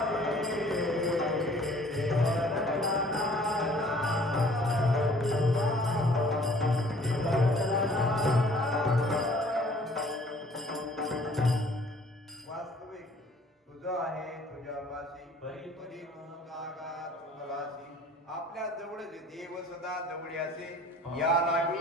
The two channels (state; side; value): normal; both; correlation 0.55